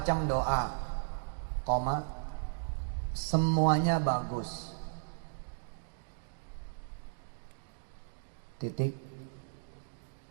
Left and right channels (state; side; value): silent; left; digital silence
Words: doa. Koma. Semuanya bagus. Titik.